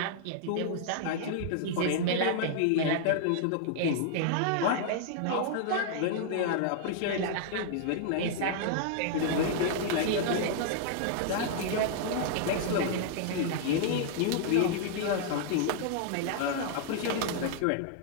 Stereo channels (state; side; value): different; both; correlation -0.01